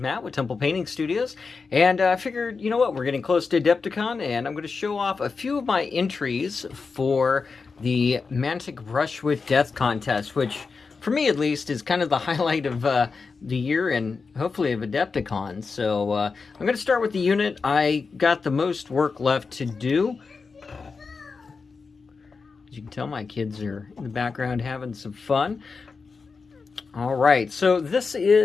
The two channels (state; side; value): quieter; right; 4.7 dB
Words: with Temple Painting Studios, and I figured, you know what, we're getting close to Adepticon, and I'm going to show off a few of my entries for the Mantic Brush with Death contest, which, for me at least, is kind of the highlight of the year and hopefully of Adepticon. So I'm going to start with the unit I got the most work left to do. As you can tell, my kids are in the background having some fun. All right, so this